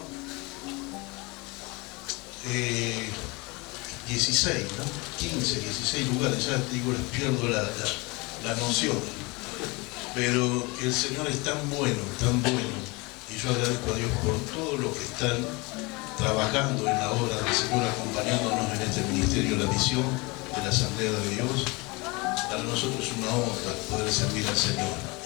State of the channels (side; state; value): right; quieter; 25.8 dB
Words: 16, ¿no? 15, 16 lugares, ya digo, les pierdo la noción. Pero el Señor es tan bueno, y yo agradezco a Dios por todo lo que están trabajando en la obra del Señor, acompañándonos en este ministerio, la misión de la Asamblea de Dios. Para nosotros es una honra poder servir al Señor.